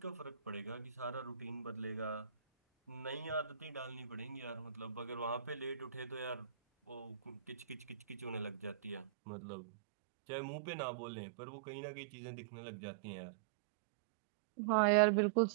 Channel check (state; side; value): drops out; left; at 9.1 s